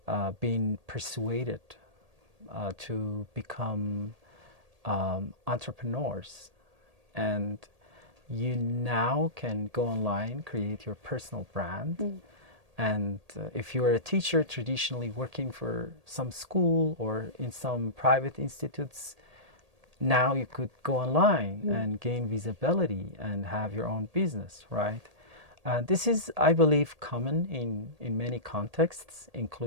been persuaded to become entrepreneurs, and you now can go online, create your personal brand. And if you are a teacher traditionally working for some school or in some private institutes, now you could go online and gain visibility and have your own business, right? This is, I believe, common in many contexts,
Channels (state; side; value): late; left; 1.8 ms